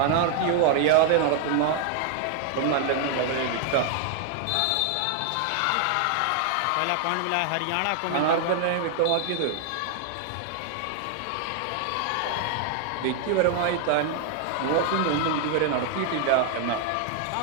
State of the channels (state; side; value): different; both; correlation 0.00